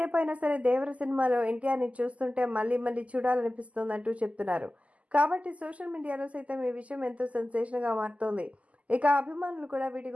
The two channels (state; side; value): late; left; 0.068 ms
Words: అయినా సరే దేవర సినిమాలో ఎన్టీఆర్ని చూస్తుంటే మళ్ళీ మళ్ళీ చూడాలనిపిస్తుందంటూ చెప్తున్నారు. కాబట్టి సోషల్ మీడియాలో సైతం ఈ విషయం ఎంతో సెన్సేషన్గా మారుతోంది. ఇక అభిమానులు కూడా వీటి